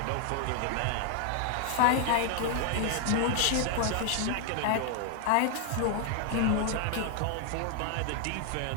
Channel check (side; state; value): both; different; correlation 0.00